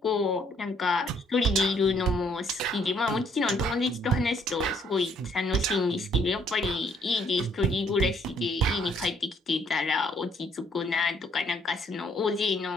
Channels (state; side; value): normal; both; correlation 0.65